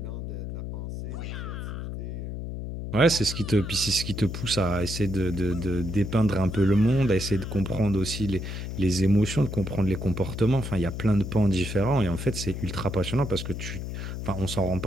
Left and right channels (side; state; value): left; noise; hum, 6 dB below the sound